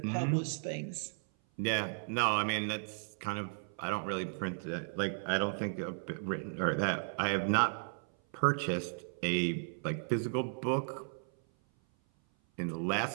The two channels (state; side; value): silent; left; 54 dB below the other